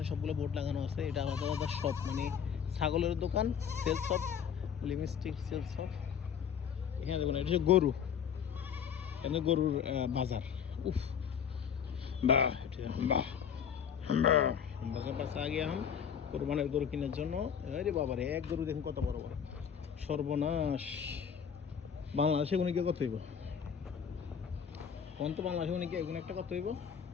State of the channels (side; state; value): right; quieter; 7.7 dB